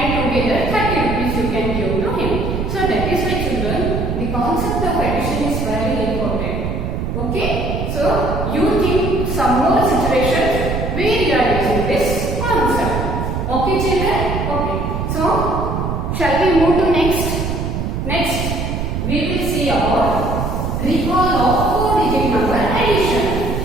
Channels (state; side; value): noise; right; rumble, 2 dB below the sound